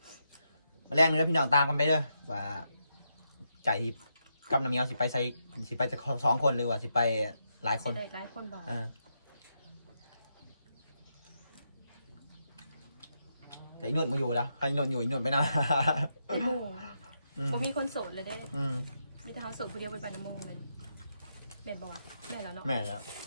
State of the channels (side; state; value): both; inverted; correlation -0.82